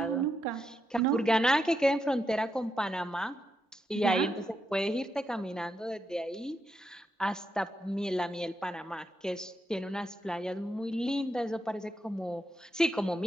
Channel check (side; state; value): both; normal; correlation 0.83